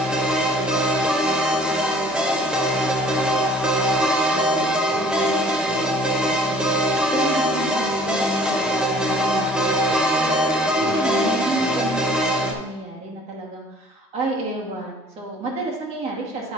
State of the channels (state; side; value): normal; both; correlation 0.53